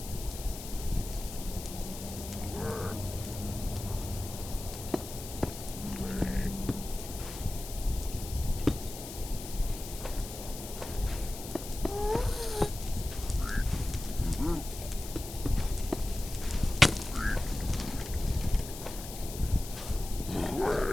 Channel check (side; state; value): left; noise; hiss, 11 dB below the sound